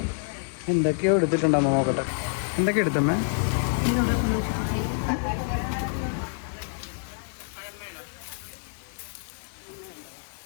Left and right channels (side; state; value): right; silent; digital silence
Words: എന്തൊക്കെയോ എടുത്തിട്ടുണ്ടമ്മ. നോക്കട്ടെ എന്തൊക്കെ എടുത്തമ്മേ.